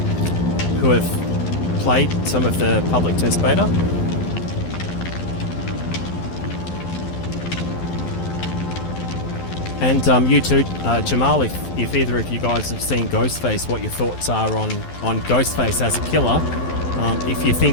have played some of the public test beta. And you too, Jamal, if either of you guys have seen Ghostface, what your thoughts are on Ghostface as a killer. If you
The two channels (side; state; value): right; late; 12 ms